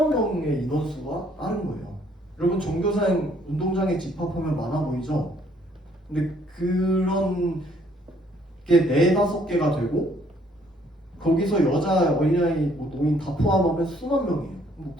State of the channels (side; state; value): both; normal; correlation 0.64